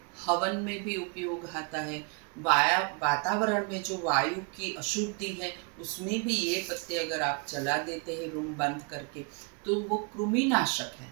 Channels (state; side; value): quieter; left; 34.2 dB